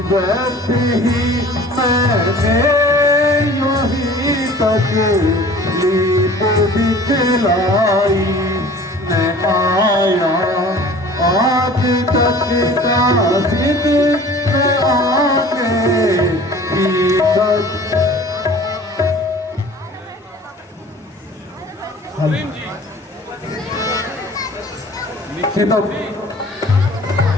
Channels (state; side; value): normal; both; correlation 0.46